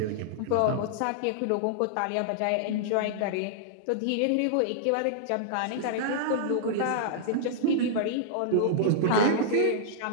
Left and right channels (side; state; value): both; different; correlation -0.01